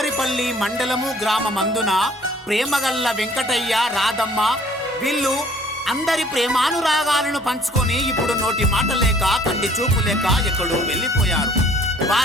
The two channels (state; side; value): normal; both; correlation 0.57